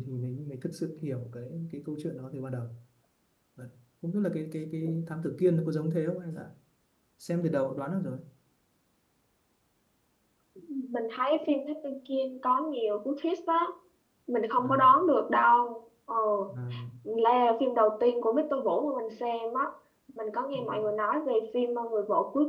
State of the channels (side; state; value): both; identical; correlation 1.00